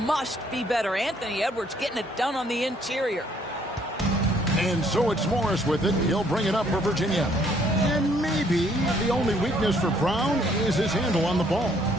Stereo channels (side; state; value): both; normal; correlation 0.65